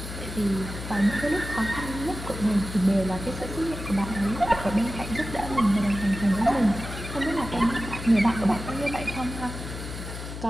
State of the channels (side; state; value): left; noise; hum, 9 dB below the sound